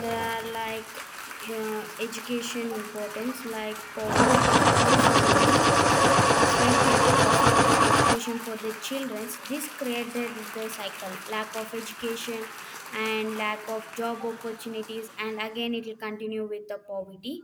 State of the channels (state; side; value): identical; both; correlation 1.00